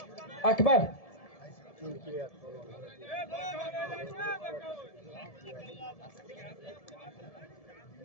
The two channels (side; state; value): right; late; 1.7 ms